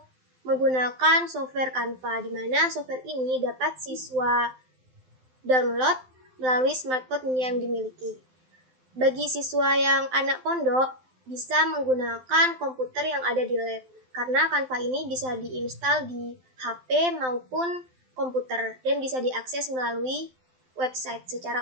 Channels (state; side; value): late; left; 12 ms